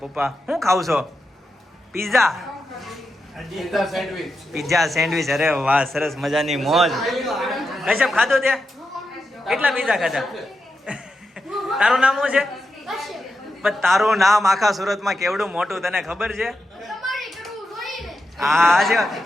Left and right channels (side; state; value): both; normal; correlation 0.87